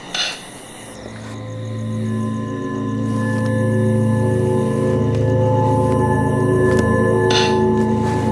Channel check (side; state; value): both; identical; correlation 1.00